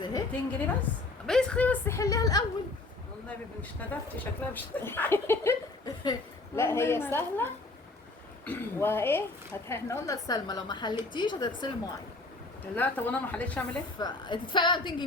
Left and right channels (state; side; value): quieter; right; 3.2 dB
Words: اهي. 200 جنيه بس؟ بس خلي بس حليها الاول. والنبي مش ندفتي شكلها مش لا هي والله ما- سهلة. وايه احنا قلنا لسلمى لو ما حلتيش هتغسلي المواعين، لا طب انا ما حليتش اعمل ايه؟ فتدفعي بقى 200